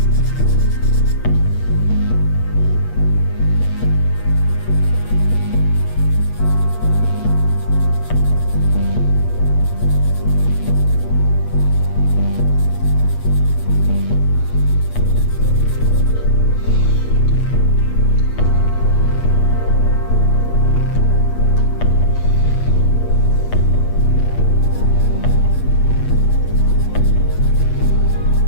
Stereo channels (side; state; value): right; late; 8.4 ms